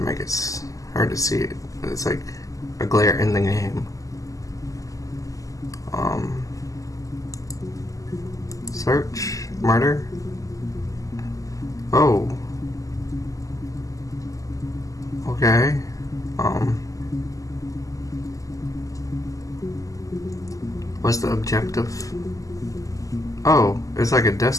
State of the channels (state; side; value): late; right; 0.16 ms